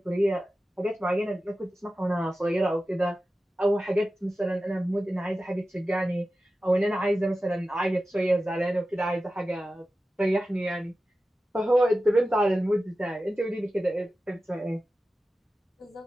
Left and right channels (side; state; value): both; normal; correlation 0.94